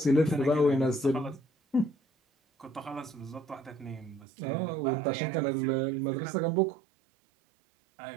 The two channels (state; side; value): drops out; left; at 4.2 s